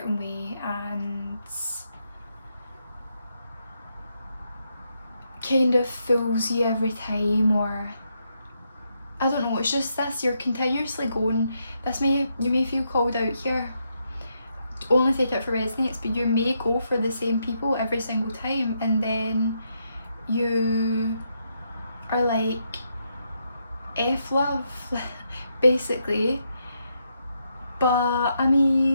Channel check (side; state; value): both; inverted; correlation -0.79